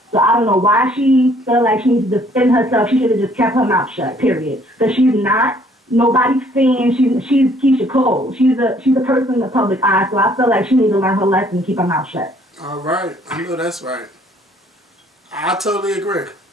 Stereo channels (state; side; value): normal; both; correlation 0.61